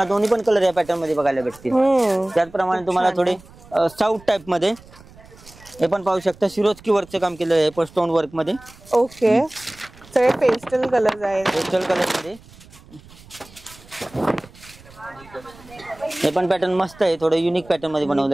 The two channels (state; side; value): noise; right; rumble, 23 dB below the sound